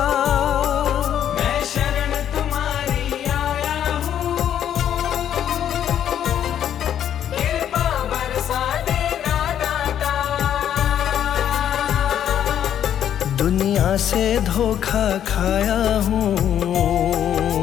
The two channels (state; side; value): quieter; right; 10.0 dB